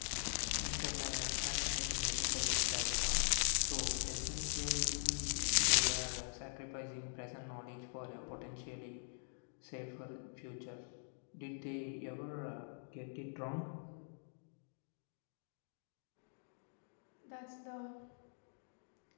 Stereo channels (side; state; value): right; silent; digital silence